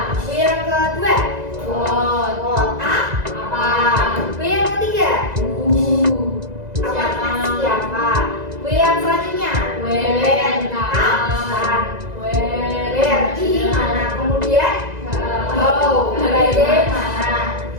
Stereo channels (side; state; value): left; late; 2.0 ms